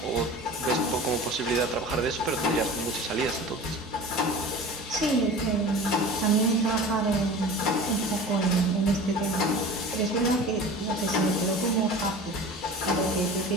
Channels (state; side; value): normal; both; correlation 0.37